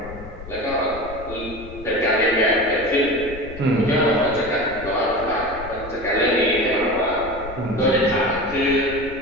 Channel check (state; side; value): noise; left; rumble, 14 dB below the sound